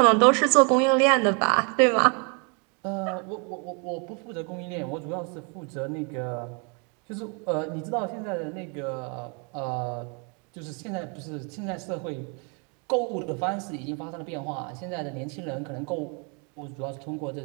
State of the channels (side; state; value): left; quieter; 35.0 dB